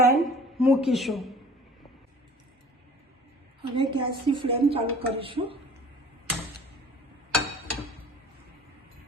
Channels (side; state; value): both; normal; correlation 0.48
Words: મૂકીશું। હવે ગેસની ફ્લેમ ચાલુ કરીશું।